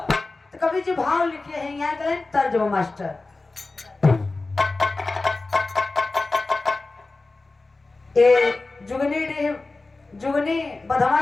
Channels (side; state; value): right; quieter; 3.4 dB